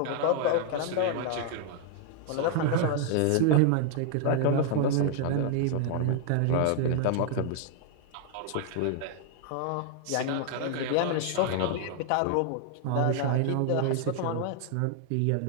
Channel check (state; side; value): different; both; correlation 0.00